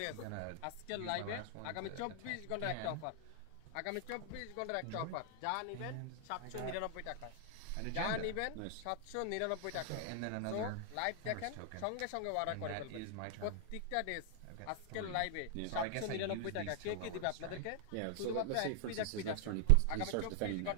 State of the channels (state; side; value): different; both; correlation 0.00